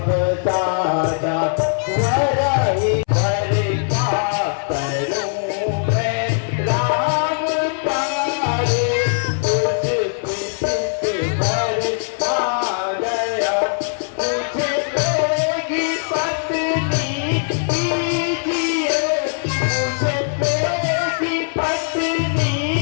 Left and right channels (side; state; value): right; silent; 66 dB below the other